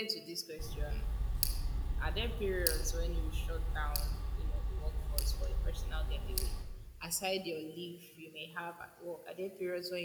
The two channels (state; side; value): identical; both; correlation 1.00